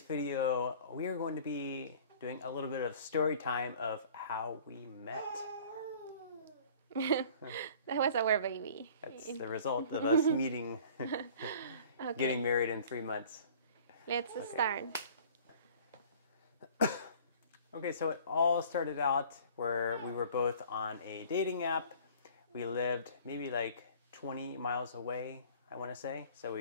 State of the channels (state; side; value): inverted; both; correlation -0.48